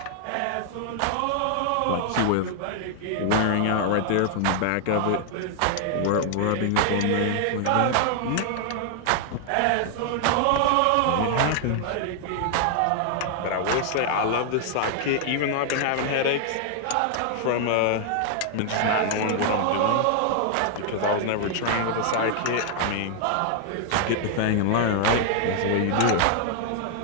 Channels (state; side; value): different; both; correlation 0.00